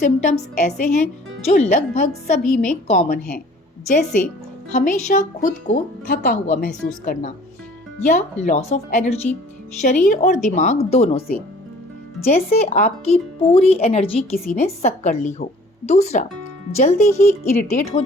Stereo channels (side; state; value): both; normal; correlation 0.51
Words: ऐसे हैं जो लगभग सभी में कॉमन हैं, जैसे हमेशा खुद को थका हुआ महसूस करना या लॉस ऑफ एनर्जी, शरीर और दिमाग दोनों से, जैसे आपकी पूरी एनर्जी किसी ने सक कर ली हो। दूसरा, जल्दी ही इरिटेट हो